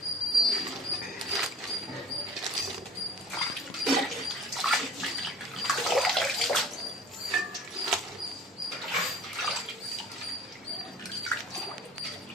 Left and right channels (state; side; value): normal; both; correlation 0.46